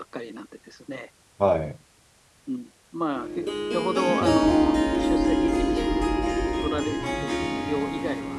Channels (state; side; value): identical; both; correlation 1.00